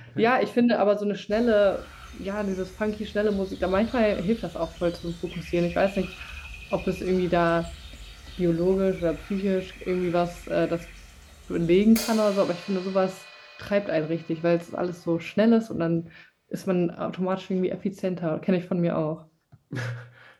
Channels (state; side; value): identical; both; correlation 1.00